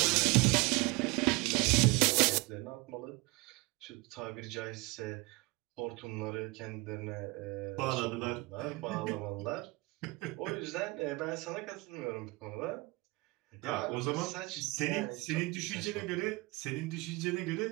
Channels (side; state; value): left; quieter; 24.3 dB